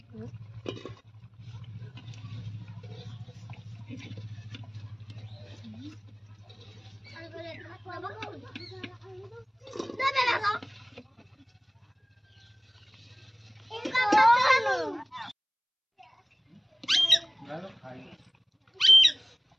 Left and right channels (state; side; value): identical; both; correlation 1.00